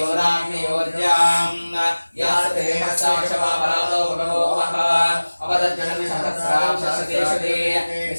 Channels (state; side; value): inverted; both; correlation -1.00